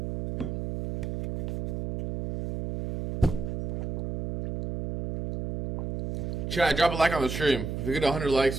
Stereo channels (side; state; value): right; noise; hum, 3 dB below the sound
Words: Chat, drop a like on the stream. If we get 100